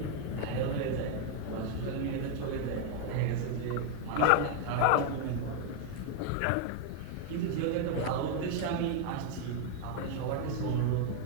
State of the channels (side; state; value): both; different; correlation 0.00